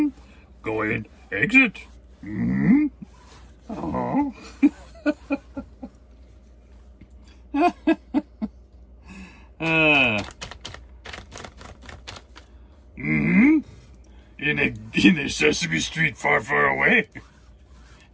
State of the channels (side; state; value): both; identical; correlation 1.00